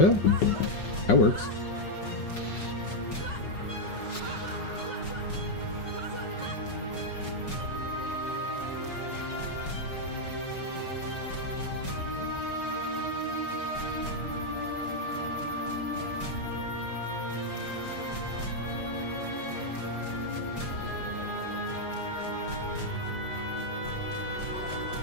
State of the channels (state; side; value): late; right; 5.5 ms